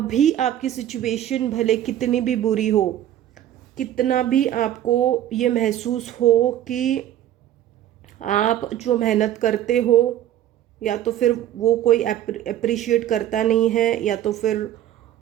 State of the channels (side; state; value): left; quieter; 11.9 dB